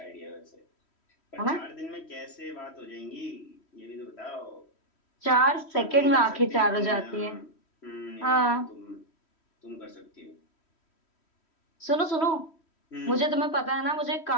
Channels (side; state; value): right; late; 3.1 ms